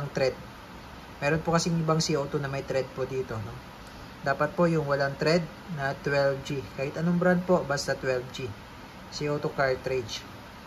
thread. Meron po kasing ibang CO2 na may thread po dito, no? Dapat po yung walang thread na 12G. Kahit anong brand po, basta 12G. CO2 cartridge.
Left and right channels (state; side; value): identical; both; correlation 1.00